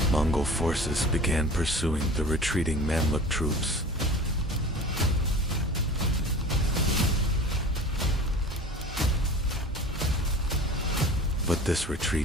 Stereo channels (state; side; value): normal; both; correlation 0.40